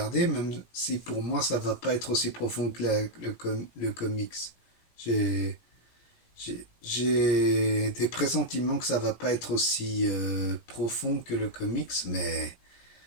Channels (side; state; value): right; late; 17 ms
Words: même si pour moi, ça va pas être aussi profond que le comics. J'ai j'ai des pressentiments que ça va pas être aussi profond que le comics, mais